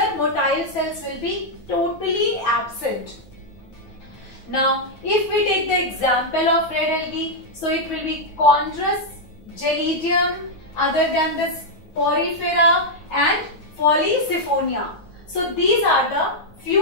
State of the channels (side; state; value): right; late; 9.4 ms